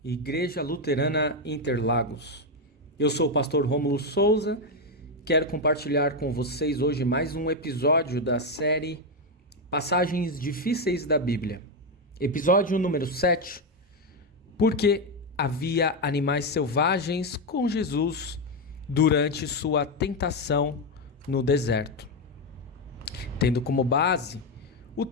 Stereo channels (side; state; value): both; normal; correlation 0.06